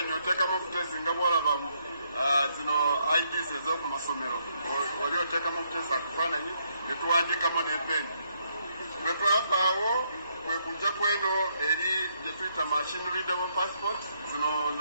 oteekamu obutezi nga bwolaba zino IDs ez'oku masomero oli oteekamu obutezi akafaananyi ne tuwandiikamu n'epeni bwe twavaawo kwe kujja ku eno eri gye tuyita machine readable passport zino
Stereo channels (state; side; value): inverted; both; correlation -0.75